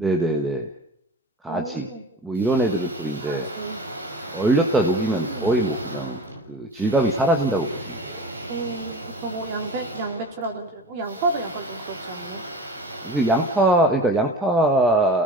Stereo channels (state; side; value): normal; both; correlation 0.35